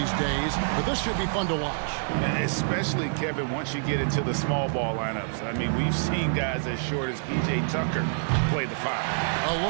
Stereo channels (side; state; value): left; silent; 60 dB below the other